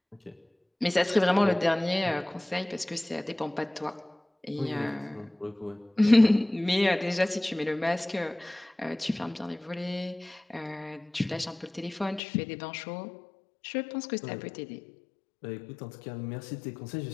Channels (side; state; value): right; drops out; at 12.2 s